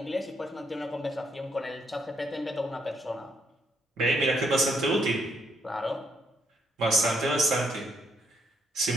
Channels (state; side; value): normal; both; correlation 0.75